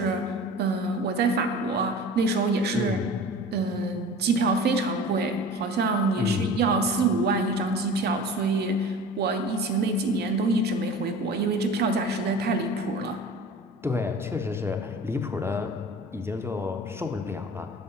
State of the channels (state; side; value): normal; both; correlation 0.39